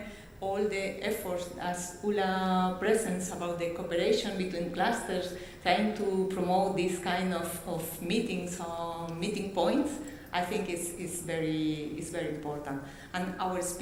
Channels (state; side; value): identical; both; correlation 1.00